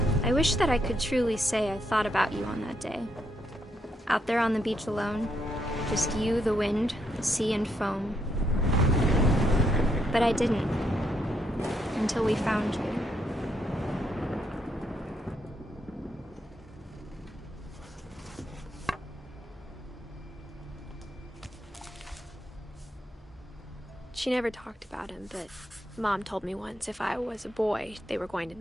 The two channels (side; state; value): both; normal; correlation 0.77